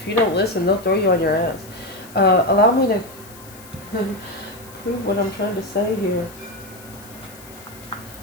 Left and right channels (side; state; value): left; noise; hiss, 20 dB below the sound